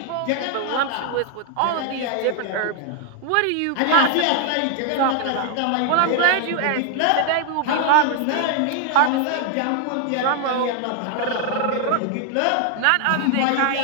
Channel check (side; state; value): both; different; correlation 0.00